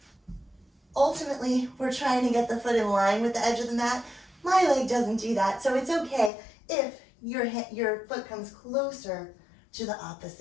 ultimately, we're trying to get the foot in line with the edge of the mat. My leg doesn't do that, so it's okay if your foot comes closer to the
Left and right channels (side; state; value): right; drops out; at 6.3 s